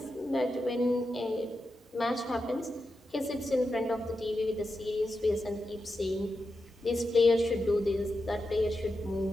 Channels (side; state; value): both; normal; correlation 0.88